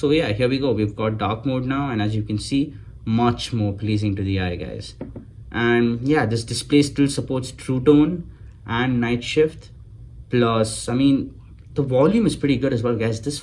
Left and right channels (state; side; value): identical; both; correlation 1.00